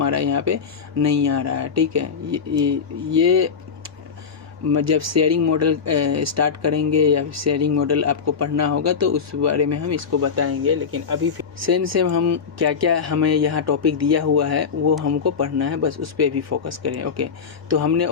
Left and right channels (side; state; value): right; quieter; 6.1 dB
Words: यहाँ पे नहीं आ रहा है, ठीक है। ये जब शेयरिंग मॉडल स्टार्ट करेंगे या शेयरिंग मॉडल आपको पढ़ना होगा तो उस बारे में हम इसको बताएंगे, लेकिन अभी सेम हम क्या क्या हमें यहाँ टॉपिक दिया हुआ है वो हमको पढ़ना है, बस उस पर भी फोकस करें, ओके। तो हमने